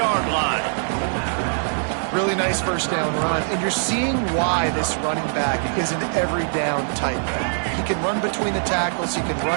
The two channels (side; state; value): left; silent; digital silence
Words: line. Really nice first down run, and you're seeing why this running back is an every down type. He can run between the tackles, he can